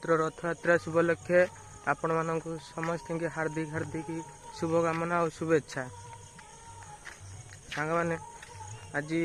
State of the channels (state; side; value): identical; both; correlation 1.00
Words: रथयात्रा शुभलक्षे आपण मानक समस्त की हार्दिक हार्दिक शुभकामना और शुभेच्छा। सांग मैंने आज